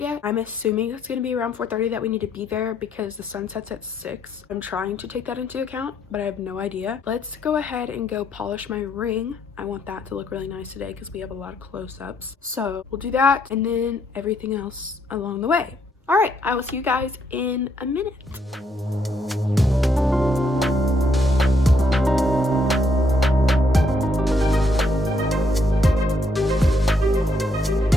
I'm assuming it's going to be around 4:30 that we need to be there because the sun sets at 6. I'm trying to take that into account, but I have no idea. Let's go ahead and go polish my ring. I want that to look really nice today because we have a lot of close-ups. So we'll do that and then everything else along the way. All right, I will see you guys in a minute.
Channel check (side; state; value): both; normal; correlation 0.73